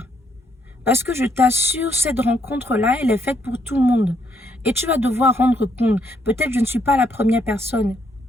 Parce que je t'assure, cette rencontre-là, elle est faite pour tout le monde. Et tu vas devoir rendre compte. Peut-être je ne suis pas la première personne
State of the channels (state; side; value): normal; both; correlation 0.73